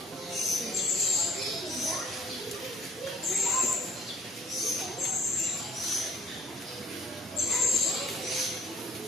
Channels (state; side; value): normal; both; correlation 0.60